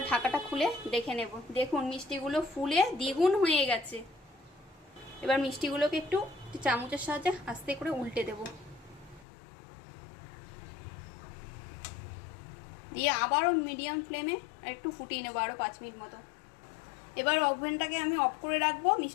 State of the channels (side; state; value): right; drops out; at 9.2 s